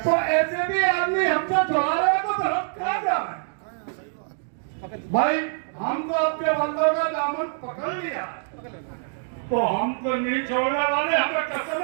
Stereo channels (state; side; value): silent; left; digital silence